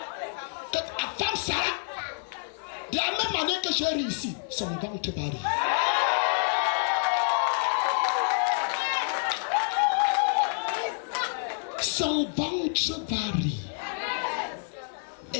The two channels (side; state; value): right; silent; digital silence